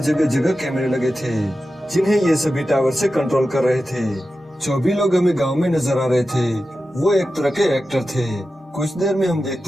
जगह जगह कैमरे लगे थे जिन्हें ये सभी टावर से कंट्रोल कर रहे थे। जो भी लोग हमें गाँव में नजर आ रहे थे वो एक तरह के एक्टर थे। कुछ देर में हम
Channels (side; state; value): both; normal; correlation 0.92